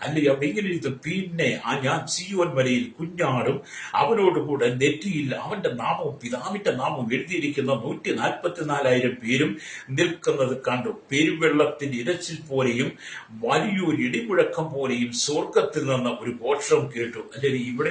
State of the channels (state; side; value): identical; both; correlation 1.00